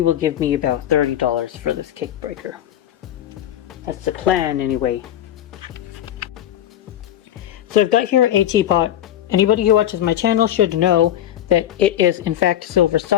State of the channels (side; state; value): right; quieter; 11.5 dB